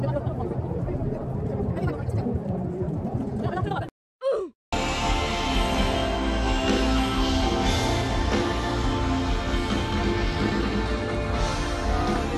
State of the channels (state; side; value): identical; both; correlation 1.00